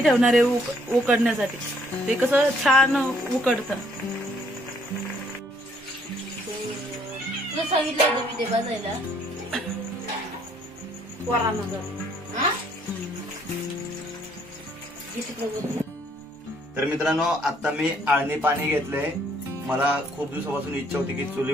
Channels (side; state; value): both; normal; correlation 0.65